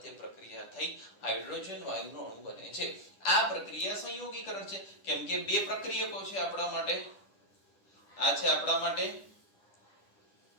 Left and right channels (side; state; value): right; late; 10 ms